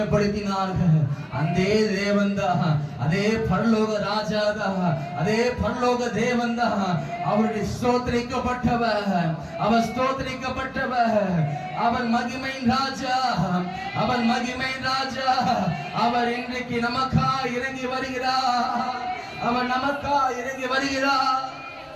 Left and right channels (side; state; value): both; identical; correlation 1.00